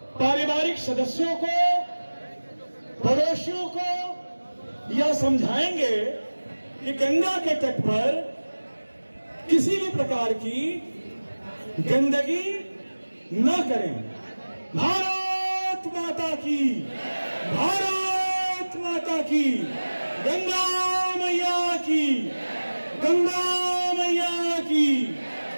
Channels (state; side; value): inverted; both; correlation -1.00